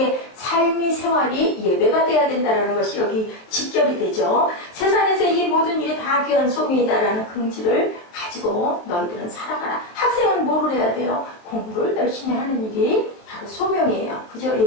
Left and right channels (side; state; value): right; late; 23 ms